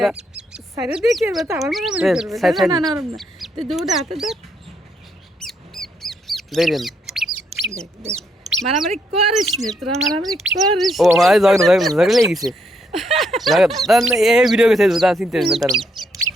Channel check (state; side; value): normal; both; correlation 0.75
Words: সাইরে দেখি এবার তো আবার মারামারি করবে না না না তুই দুটো হাতে দেখ দেখেন দেখ দেখ মারামারি করিস নি তোরা মারামারি করিস ও ভাই ঝগড়া লেগে গেছে এই ভিডিও কে ছেড়ে দাও চিন্তা না তার